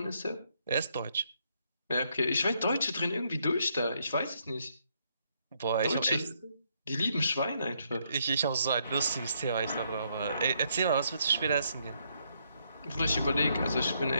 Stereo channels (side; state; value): both; inverted; correlation -0.74